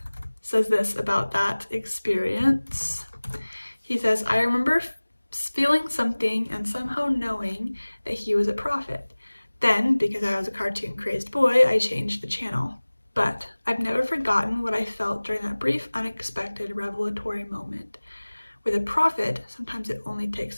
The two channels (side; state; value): both; inverted; correlation -1.00